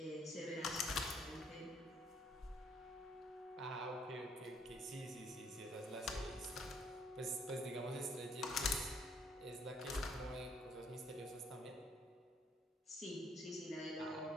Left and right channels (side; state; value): both; normal; correlation 0.66